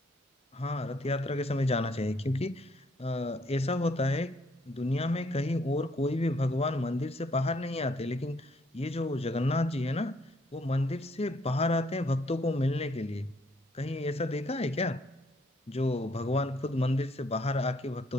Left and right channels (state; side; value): normal; both; correlation 0.67